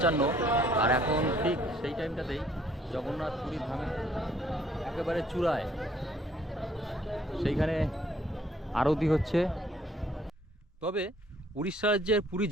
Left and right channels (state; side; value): normal; both; correlation 0.63